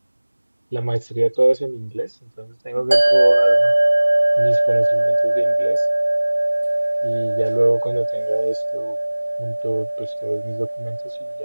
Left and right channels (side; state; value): both; inverted; correlation -1.00